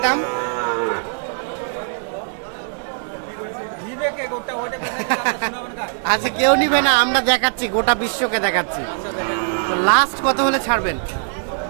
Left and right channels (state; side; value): silent; left; 64 dB below the other